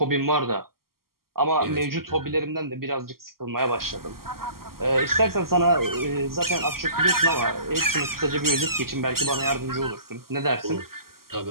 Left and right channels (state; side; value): late; left; 0.92 ms